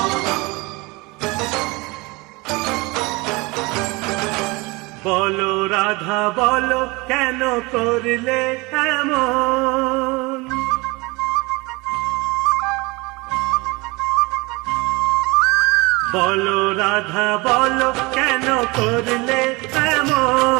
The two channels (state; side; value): quieter; left; 24.9 dB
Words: বলো রাধা বলো কেন করলে এমন, বলো রাধা বলো কেন করলে